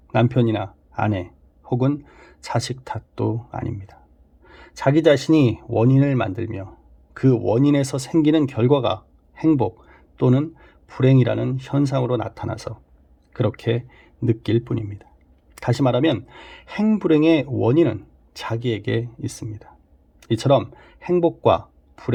남편이나 아내 혹은 자식 탓도 아닙니다. 자기 자신이 원인을 만들며 그 원인에서 생기는 결과가 행복 또는 불행이라는 현상으로 나타나서 그렇게 느낄 뿐입니다. 다시 말하면 행불행의 원인은 자기에게 있습니다. 이처럼 행복과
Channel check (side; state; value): both; identical; correlation 1.00